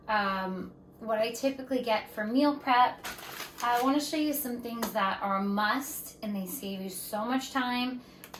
what I typically get for meal prep, I want to show you some things that are a must, and they save you so much time.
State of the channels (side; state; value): both; identical; correlation 1.00